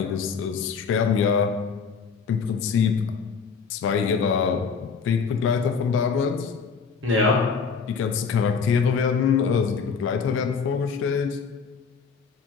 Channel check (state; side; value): quieter; right; 5.7 dB